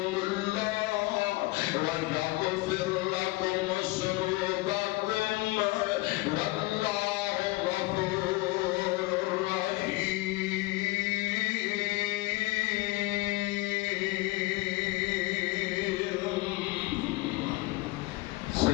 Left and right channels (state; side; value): quieter; right; 21.1 dB